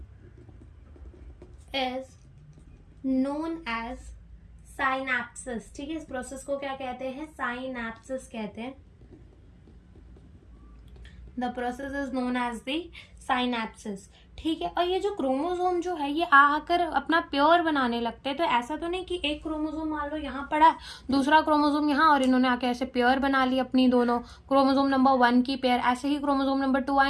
is known as synapses, ठीक है। इस प्रोसेस को क्या कहते हैं, साइनैप्सिस कहते हैं। The process is known as the synapses, ठीक है। और ये जो क्रोमोसोम जो है ये आकर अपना पेयर बनाने लगते हैं। तो ऐसा तो नहीं कि एक क्रोमोसोम मान लो यहाँ पड़ा है, दूसरा क्रोमोसोम यहाँ, और इन्होंने आके ऐसे पेयर बना ली अपनी दोनों, क्रोमोसोम नंबर 1 की पेयर, ऐसे ही क्रोमोसोम नंबर 2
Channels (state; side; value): identical; both; correlation 1.00